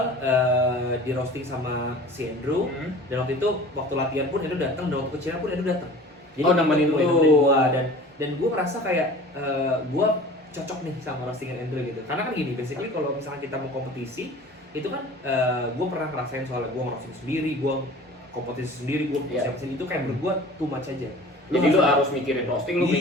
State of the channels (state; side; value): normal; both; correlation 0.42